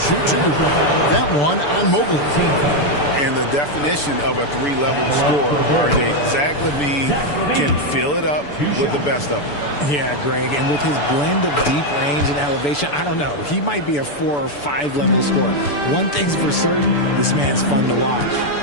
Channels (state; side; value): late; right; 6.9 ms